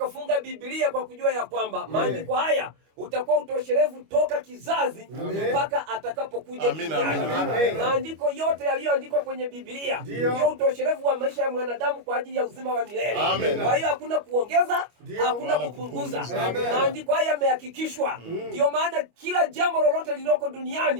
Biblia kwa kujua ya kwamba maandiko haya utakuwa utosherevu toka kizazi mpaka atakapokuja duniani. Maandiko yote yaliyoandikwa kwenye Biblia ndio utosherevu wa maisha ya mwanadamu kwa ajili ya uzima wa milele. Kwa hiyo hakuna kuongeza, hakuna kupunguza. Maandiko haya yamehakikishwa. Ndio maana kila jambo lolote lililoko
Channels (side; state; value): left; late; 25 ms